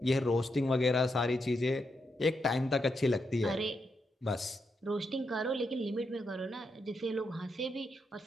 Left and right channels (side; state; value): both; normal; correlation 0.83